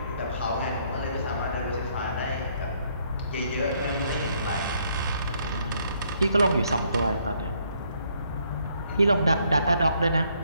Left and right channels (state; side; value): inverted; both; correlation -0.69